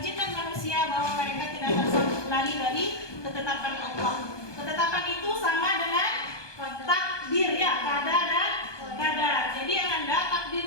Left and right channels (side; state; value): right; late; 1.2 ms